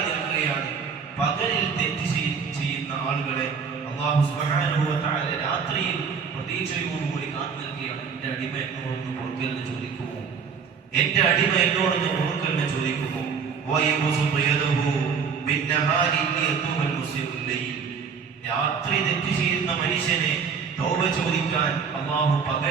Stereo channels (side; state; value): left; quieter; 6.1 dB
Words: നിൽക്കുകയാണ്. പകലിൽ തെറ്റ് ചെയ്യുന്ന ആളുകളെ അല്ലാഹു സുബ്ഹാനഹു വ തആല രാത്രിയിൽ പ്രതീക്ഷയോടുകൂടി കാത്തു നിൽക്കുകയാണ്. എന്റെ അടിമ എന്നോടൊന്ന് പൊറുക്കലിന് ചോദിക്കുമോ, എന്റെ അടിമ എന്നോടൊന്ന് പൊറുക്കലിന് ചോദിക്കുമോ. രാത്രി തെറ്റ് ചെയ്യുന്ന മനുഷ്യനെ തൗബ ചോദിക്കാൻ അല്ലാഹു